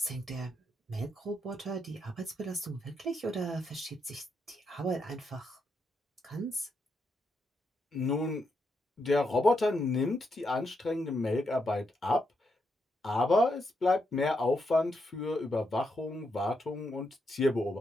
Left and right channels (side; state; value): both; normal; correlation 0.81